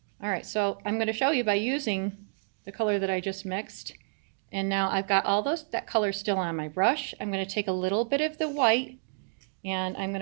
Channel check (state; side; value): silent; left; digital silence